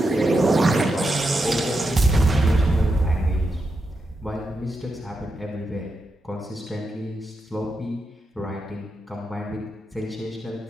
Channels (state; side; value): normal; both; correlation 0.86